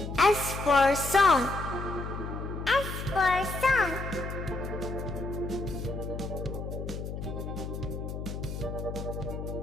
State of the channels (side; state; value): left; noise; hum, 6 dB below the sound